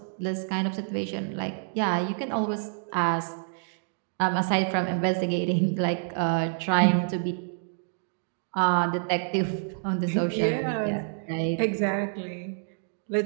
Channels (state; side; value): silent; left; digital silence